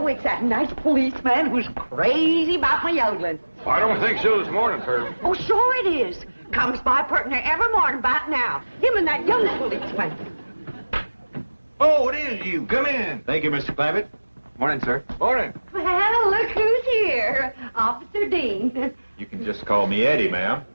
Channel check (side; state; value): both; inverted; correlation -1.00